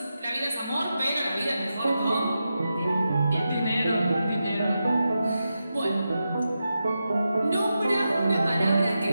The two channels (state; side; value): inverted; both; correlation -0.89